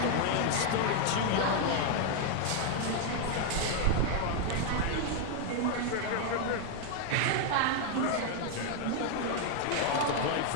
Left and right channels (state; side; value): different; both; correlation 0.01